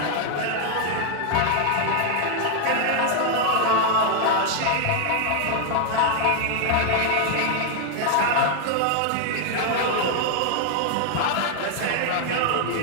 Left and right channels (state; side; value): different; both; correlation 0.00